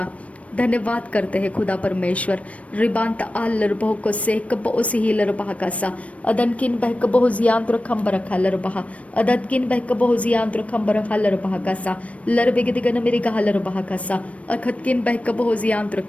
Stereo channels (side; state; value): right; late; 0.065 ms